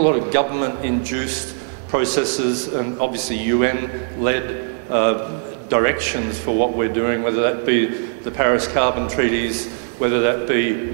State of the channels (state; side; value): silent; left; digital silence